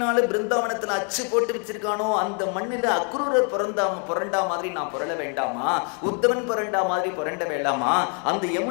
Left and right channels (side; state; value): right; quieter; 39.3 dB